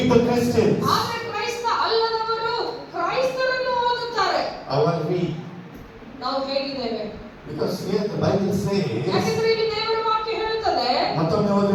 the Christians. ಆದ್ರೆ ಕ್ರೈಸ್ತ ಅಲ್ಲದವರು ಕ್ರೈಸ್ತರನ್ನು ಓದುತ್ತಾರೆ. How are we? ನಾವು ಹೇಗಿದ್ದೇವೆ? Because here the Bible says, ಯಾಕೆಂದ್ರೆ ಇಲ್ಲಿ ದೇವರ ವಾಕ್ಯ ಹೇಳುತ್ತದೆ, ಮತ್ತೊಮ್ಮೆ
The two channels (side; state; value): both; identical; correlation 1.00